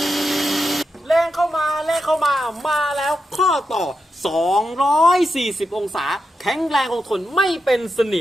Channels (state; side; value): normal; both; correlation 0.87